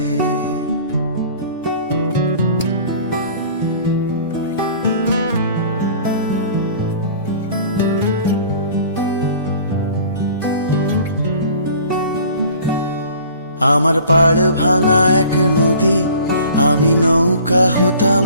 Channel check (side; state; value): both; inverted; correlation -0.47